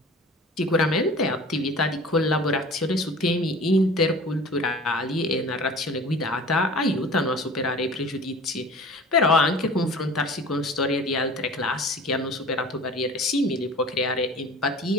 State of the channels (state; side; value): normal; both; correlation 0.42